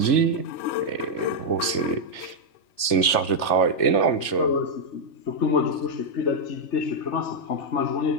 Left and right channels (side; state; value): right; late; 3.4 ms